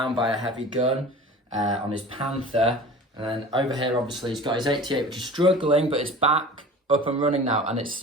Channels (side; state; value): both; normal; correlation 0.39